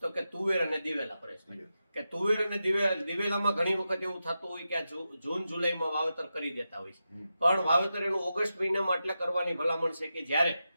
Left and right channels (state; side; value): inverted; both; correlation -0.89